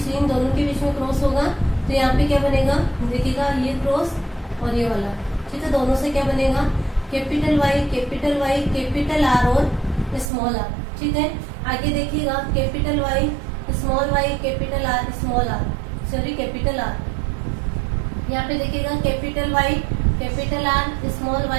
इन दोनों के बीच में क्रॉस होगा, तो यहाँ पे क्या बनेगा, देखिएगा ये क्रॉस और ये वाला। ठीक है, दोनों से क्या बनेगा, कैपिटल वाई कैपिटल आर और स्मॉल आर। ठीक है, आगे देखिएगा capital Y capital R small R, sorry capital R. यहाँ पे देखिएगा capital Y capital R small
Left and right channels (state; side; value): drops out; left; at 10.3 s